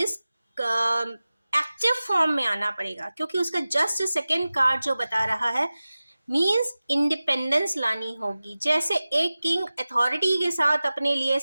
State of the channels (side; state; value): both; inverted; correlation -0.96